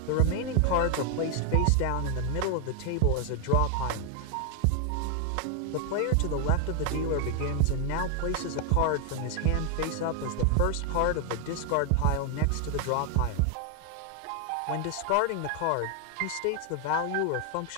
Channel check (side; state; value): both; different; correlation 0.01